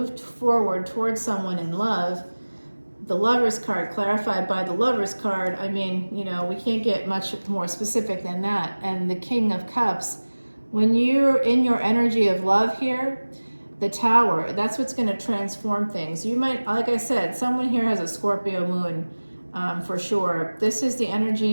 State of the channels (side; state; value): both; inverted; correlation -1.00